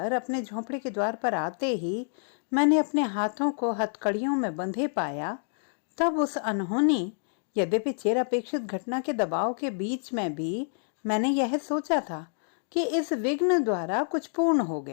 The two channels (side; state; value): right; silent; digital silence